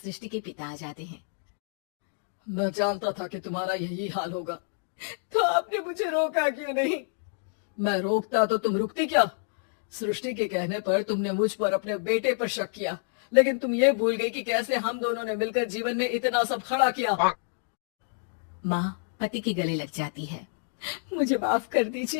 के पिता आ जाते हैं। मैं जानता था कि तुम्हारा यही हाल होगा, तो आपने मुझे रोका क्यों नहीं? मैं रोकता तो तुम रुकती क्या? सृष्टि के कहने पर तुमने मुझ पर अपने बेटे पर शक किया, लेकिन तुम ये भूल गई कि कैसे हम दोनों ने मिलकर जीवन में इतना सब खड़ा किया। माँ पति के गले लग जाती है। मुझे माफ कर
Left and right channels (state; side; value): silent; right; digital silence